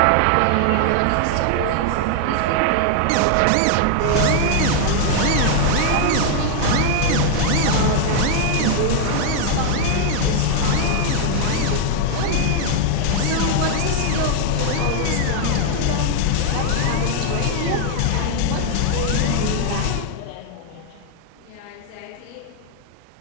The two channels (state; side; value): different; both; correlation 0.00